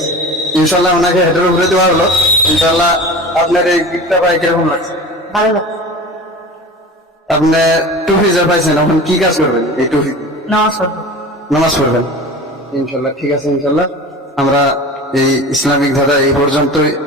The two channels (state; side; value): normal; both; correlation 0.35